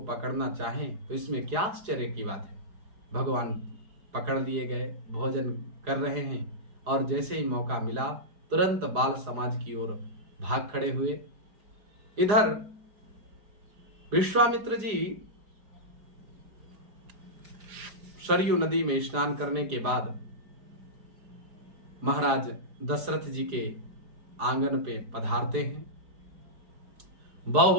पकड़ना चाहें तो इसमें क्या आश्चर्य की बात है। भगवान पकड़ लिए गए, भोजन कर रहे हैं, और जैसे ही मौका मिला तुरंत बाल समाज की ओर भाग खड़े हुए। इधर विश्वामित्र जी सरयू नदी में स्नान करने के बाद महाराज दशरथ जी के आंगन पे पधारते हैं।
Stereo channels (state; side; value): late; left; 4.8 ms